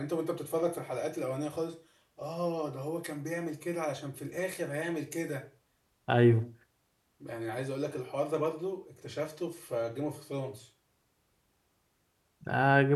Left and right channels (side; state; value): both; identical; correlation 1.00